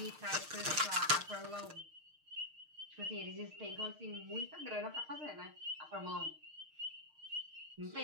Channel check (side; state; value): left; late; 6.5 ms